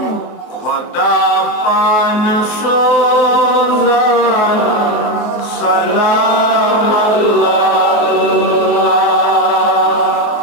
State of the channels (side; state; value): right; late; 24 ms